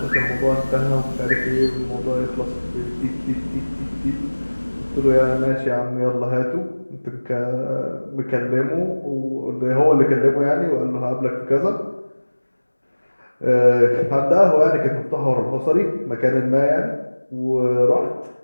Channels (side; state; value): both; inverted; correlation -1.00